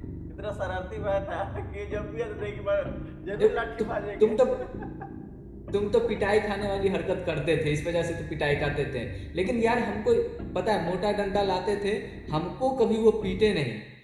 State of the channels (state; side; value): identical; both; correlation 1.00